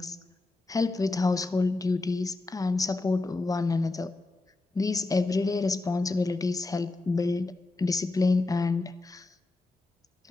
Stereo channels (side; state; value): right; quieter; 3.3 dB